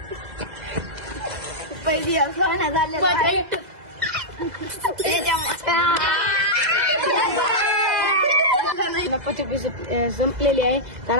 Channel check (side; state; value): left; late; 2.0 ms